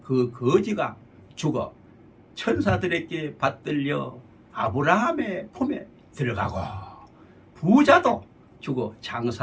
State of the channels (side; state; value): both; identical; correlation 1.00